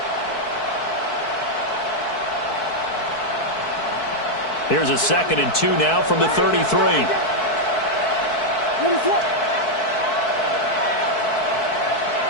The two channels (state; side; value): late; right; 4.6 ms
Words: Here's a 2nd and 2 now from the 33.